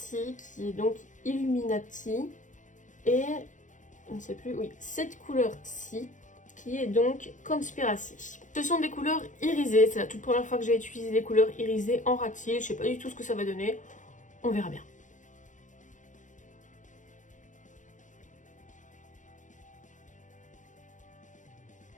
qui est donc Illuminati. Et, on ne sait plus, oui, cette couleur-ci, qui est donc Conspiracy. Ce sont des couleurs irisées, c'est la toute première fois que j'ai utilisé des couleurs irisées en ras de cils. Je sais pas du tout ce que ça va donner, on verra bien.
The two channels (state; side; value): late; right; 0.36 ms